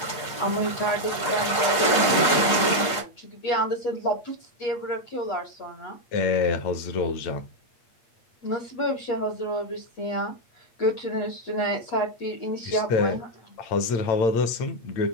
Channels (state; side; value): late; right; 8.6 ms